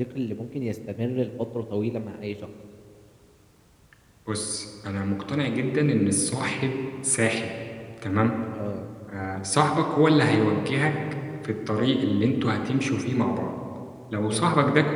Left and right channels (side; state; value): both; identical; correlation 1.00